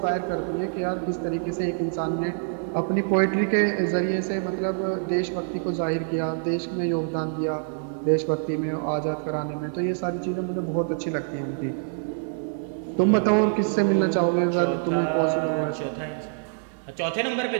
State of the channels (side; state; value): left; silent; digital silence